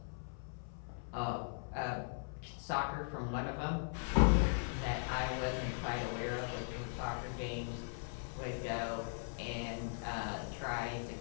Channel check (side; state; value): right; silent; 52 dB below the other